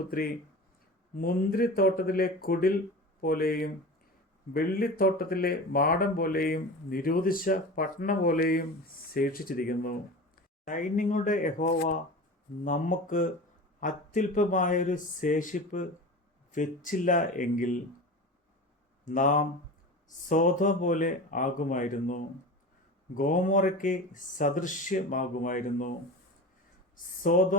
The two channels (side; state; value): both; normal; correlation 0.31